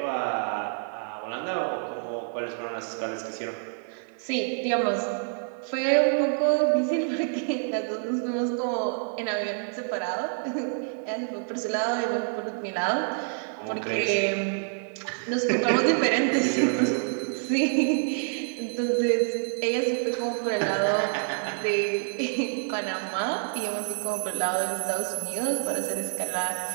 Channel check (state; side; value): silent; left; 60 dB below the other